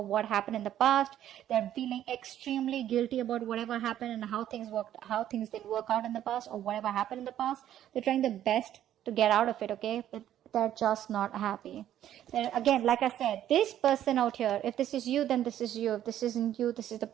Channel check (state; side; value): quieter; left; 11.5 dB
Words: what happened in the past. They're feeling extremely guilty about whatever happened and how things didn't work out in the past, or whatever happened in the past. They're trying their best to get out of it, okay? But they're just not happy. Again, like I said, this person out here, if this is you, then this is you. If this isn't you, this is the